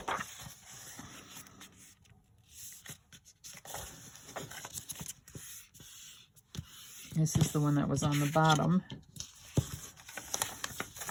This is the one that was on the bottom.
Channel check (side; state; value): both; identical; correlation 1.00